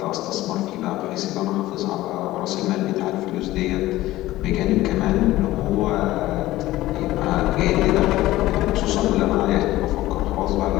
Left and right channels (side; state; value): right; quieter; 16.5 dB